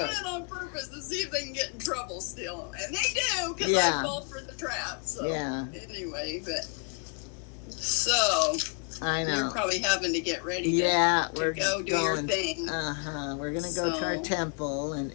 it on purpose to see if they can get in trouble still. And they do, because I fall for the trap. So anyway, but so I know. You're probably having to get ready to go do your thing. We're going to go to our temple, and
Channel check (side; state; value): right; quieter; 39.4 dB